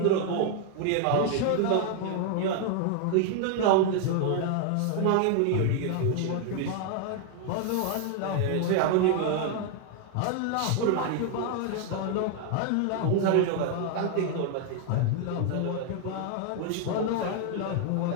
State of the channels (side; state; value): both; different; correlation 0.00